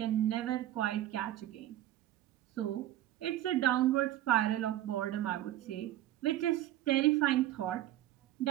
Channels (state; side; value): quieter; left; 13.6 dB